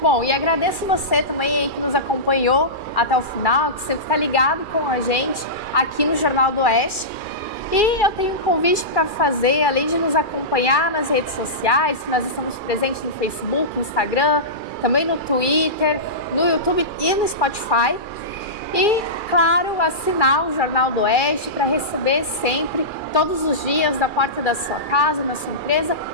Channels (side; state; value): right; late; 2.4 ms